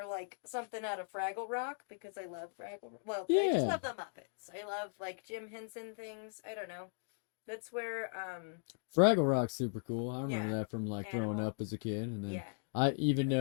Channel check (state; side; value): silent; right; digital silence